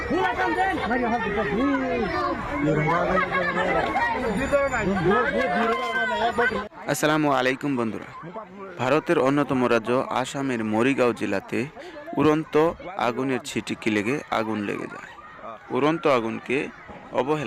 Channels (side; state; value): both; identical; correlation 1.00